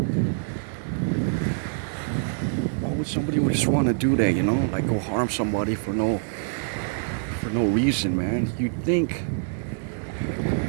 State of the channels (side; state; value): left; silent; 61 dB below the other